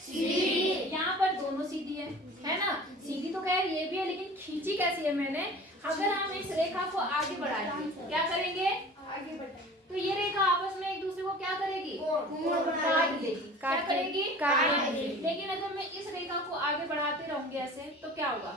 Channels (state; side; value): normal; both; correlation 0.42